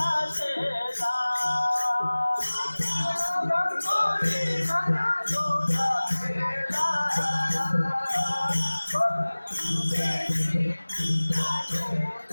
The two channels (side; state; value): both; inverted; correlation -1.00